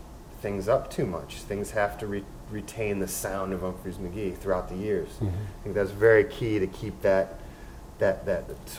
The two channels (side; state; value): both; identical; correlation 1.00